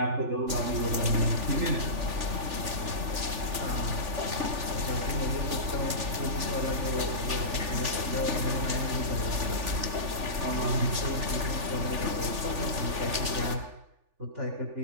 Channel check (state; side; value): late; left; 3.4 ms